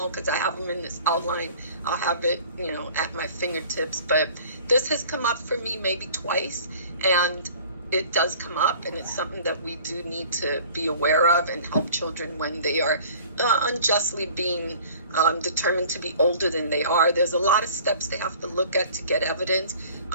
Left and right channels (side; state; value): both; inverted; correlation -0.48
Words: because I have them in this outline. I'll have it, at my fingertips. But this has come up for me maybe twice, and it does come up, and it's something that we do need to be aware of and help children when they are unjustly being determined to be older than they are. There's a lot of steps they have to look at to get evidence